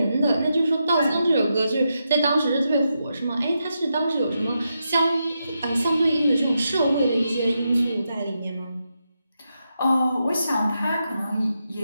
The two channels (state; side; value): inverted; both; correlation -0.85